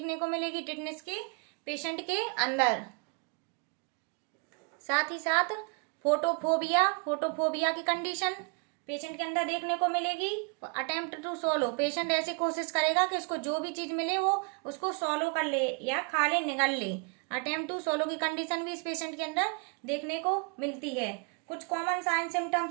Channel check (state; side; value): quieter; left; 35.6 dB